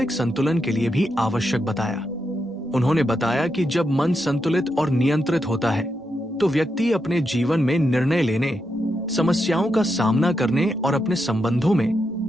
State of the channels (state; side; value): normal; both; correlation 0.84